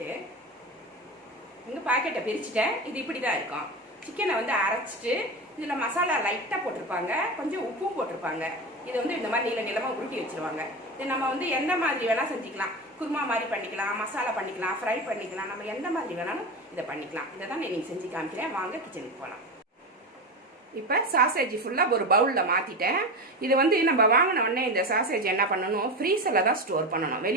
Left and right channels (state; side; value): normal; both; correlation 0.22